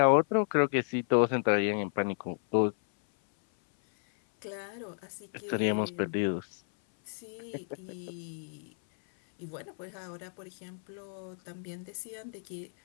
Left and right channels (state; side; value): silent; right; 56 dB below the other